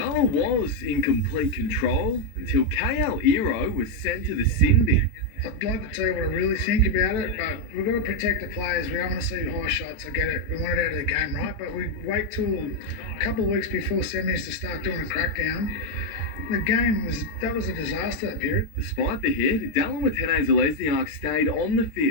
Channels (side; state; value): right; late; 13 ms